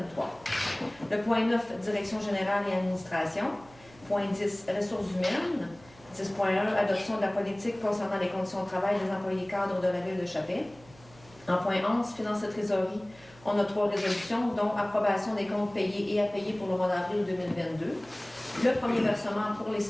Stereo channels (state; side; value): noise; right; hum, 24 dB below the sound